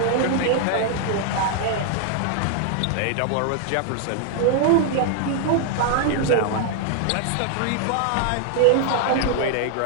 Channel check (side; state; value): both; different; correlation 0.00